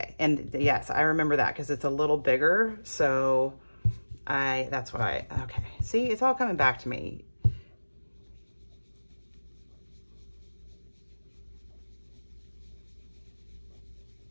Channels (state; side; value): inverted; both; correlation -1.00